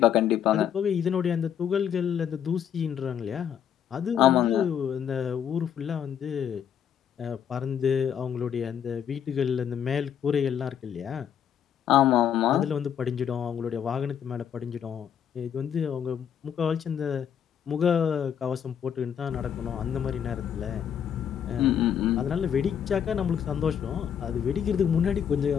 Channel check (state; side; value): quieter; right; 8.7 dB